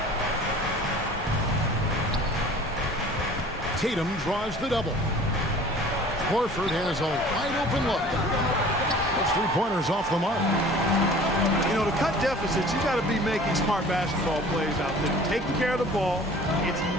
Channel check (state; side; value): normal; both; correlation 0.46